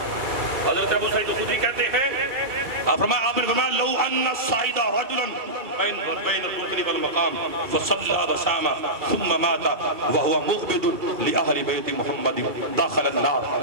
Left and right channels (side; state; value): left; late; 2.4 ms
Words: حضرت ابو سعید خدری کہتے ہیں، آپ نے فرمایا لو ان الصعید رجلا بین الرکن والمقام فصلى وصام ثم مات وهو مغبد لاہل بیت محمد داخل النار۔